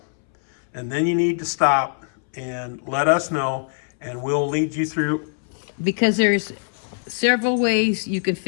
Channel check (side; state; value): right; silent; 63 dB below the other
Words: And then you need to stop and let us know, and we'll lead you through. Because there's several ways you can